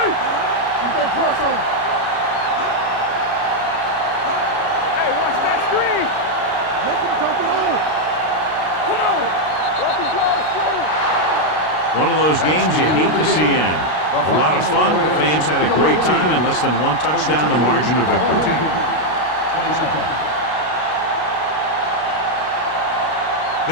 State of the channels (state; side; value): late; right; 33 ms